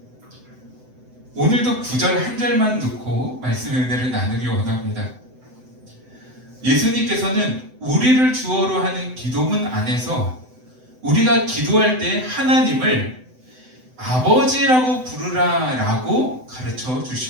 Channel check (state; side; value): late; left; 7.9 ms